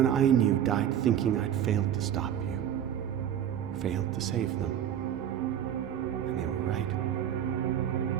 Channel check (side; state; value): left; quieter; 10.0 dB